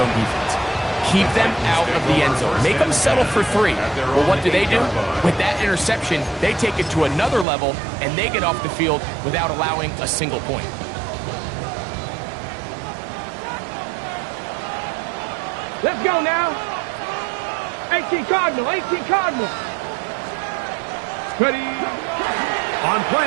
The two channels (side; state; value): left; drops out; at 7.5 s